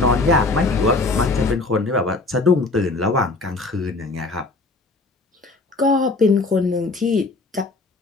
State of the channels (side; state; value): right; quieter; 3.3 dB